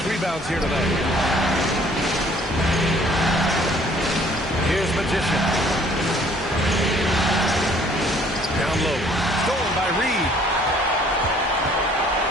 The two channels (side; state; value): both; normal; correlation 0.58